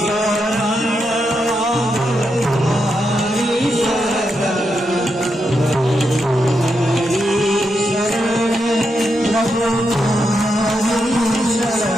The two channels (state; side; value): normal; both; correlation 0.84